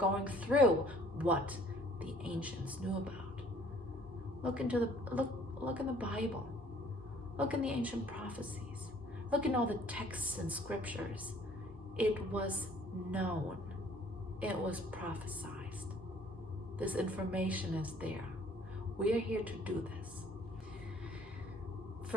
through what the ancients knew about. Look in the Bible. Look in the ancient prophecies. Look in all the texts and scriptures. It was known. It was prophesied. This information is there. We are here to do this.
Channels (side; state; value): both; normal; correlation 0.56